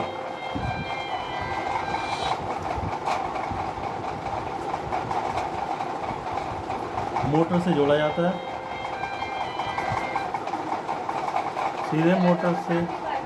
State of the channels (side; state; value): both; identical; correlation 1.00